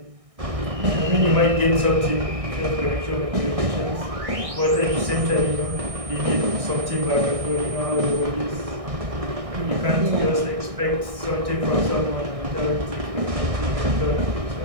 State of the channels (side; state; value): left; late; 1.6 ms